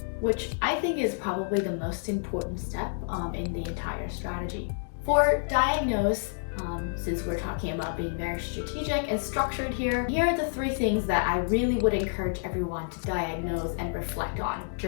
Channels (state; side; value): silent; right; digital silence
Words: which I think is probably the most important step in the entire strategy. For diagnose, since we're talking about being very strategic and structured here are the 3 things that I really would encourage everyone to diagnose and reflect on